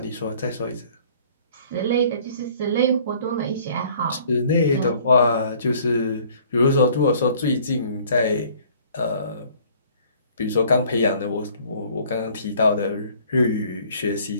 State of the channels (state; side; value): inverted; both; correlation -0.55